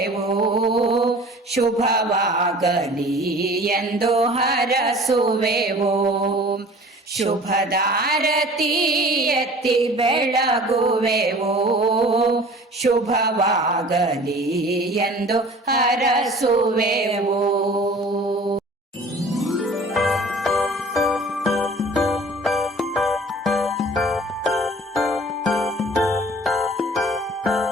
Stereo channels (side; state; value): both; normal; correlation 0.45